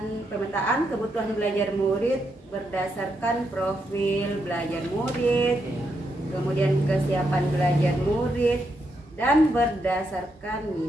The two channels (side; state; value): both; normal; correlation 0.81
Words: kebutuhan belajar murid berdasarkan profil belajar murid, kemudian kesiapan belajar murid, dan berdasarkan